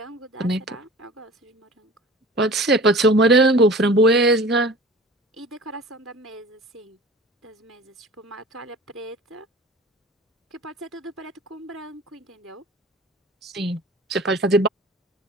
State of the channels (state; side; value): normal; both; correlation 0.41